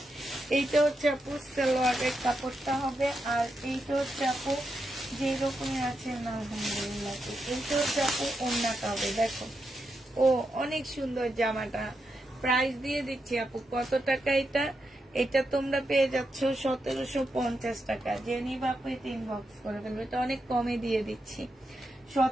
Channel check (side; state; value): both; normal; correlation 0.85